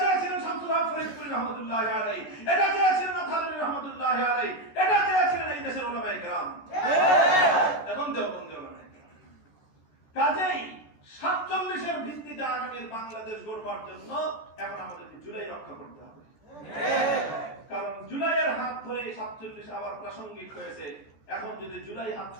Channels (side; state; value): right; late; 13 ms